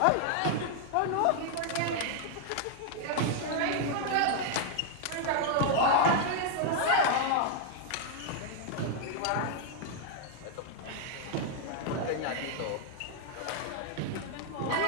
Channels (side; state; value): both; different; correlation 0.00